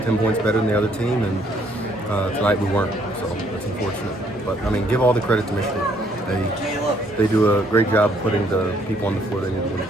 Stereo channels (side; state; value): both; normal; correlation 0.66